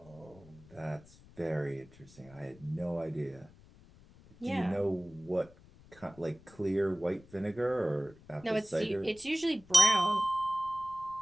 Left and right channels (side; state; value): left; noise; rumble, 24 dB below the sound